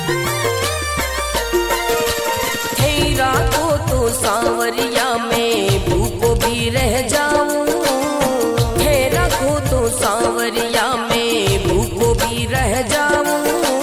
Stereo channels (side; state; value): both; identical; correlation 1.00